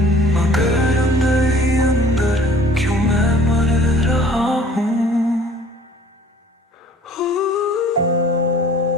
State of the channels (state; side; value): normal; both; correlation 0.51